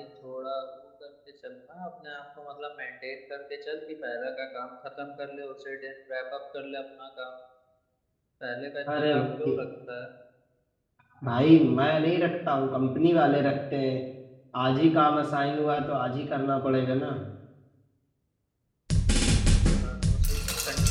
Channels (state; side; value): identical; both; correlation 1.00